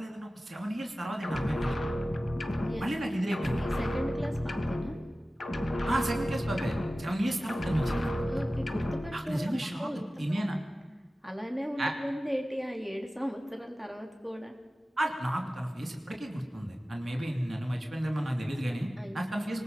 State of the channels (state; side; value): normal; both; correlation 0.96